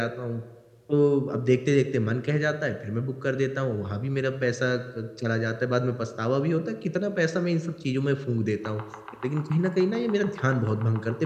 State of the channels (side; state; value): both; identical; correlation 1.00